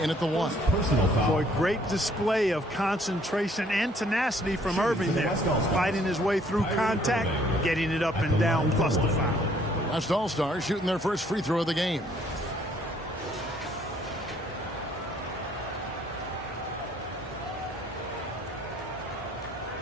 at the 1. Boy, great display of concentration and tenacity from Irving there. Fighting his way through contact, getting it up and down, plus the foul. West All-Stars shooting their first free throw of the game.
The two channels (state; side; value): normal; both; correlation 0.62